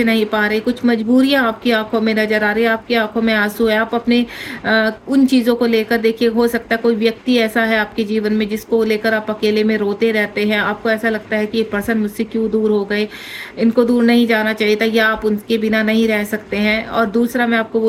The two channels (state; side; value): identical; both; correlation 1.00